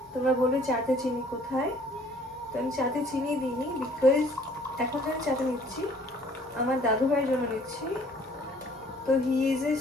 তোমরা বলবে চাতে চিনি কোথায়, তো আমি চাতে চিনি দিইনি, বিকজ এখন আমি চাতে নিচ্ছি আমার দাদু ভাইয়ের জন্য নিচ্ছি। তো he is a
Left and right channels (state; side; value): normal; both; correlation 0.57